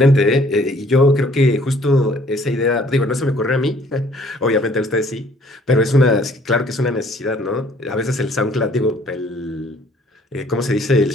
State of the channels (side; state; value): both; normal; correlation 0.59